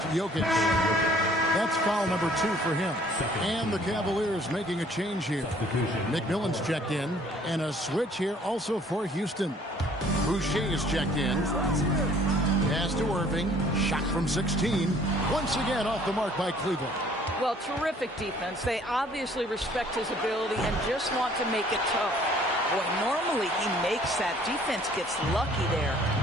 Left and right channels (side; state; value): both; normal; correlation 0.57